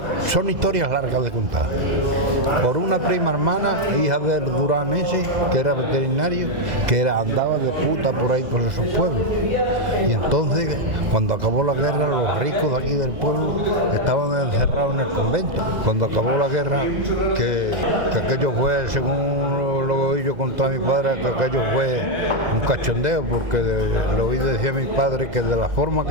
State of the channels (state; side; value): late; left; 2.0 ms